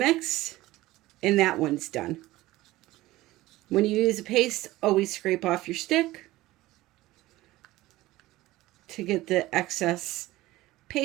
and that one's done. When you use a paste, always scrape off your stick to get the excess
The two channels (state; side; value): quieter; left; 17.6 dB